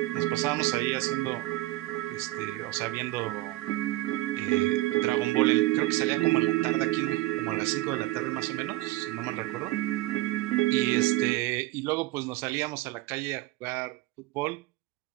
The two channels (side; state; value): left; quieter; 18.0 dB